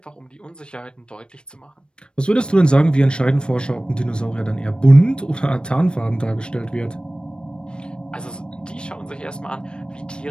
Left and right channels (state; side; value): late; right; 0.054 ms